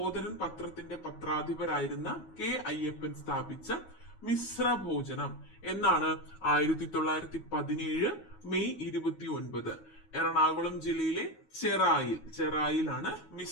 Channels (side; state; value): right; late; 9.4 ms